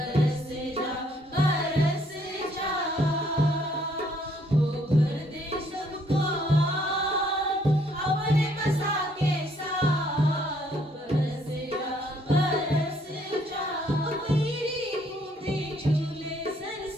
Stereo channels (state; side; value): normal; both; correlation 0.66